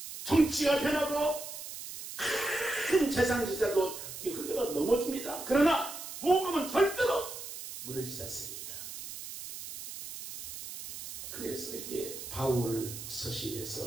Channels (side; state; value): right; noise; hiss, 10 dB below the sound